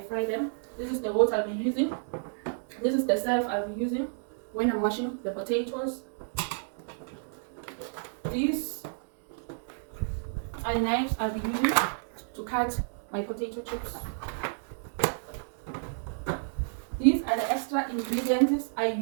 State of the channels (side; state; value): left; silent; digital silence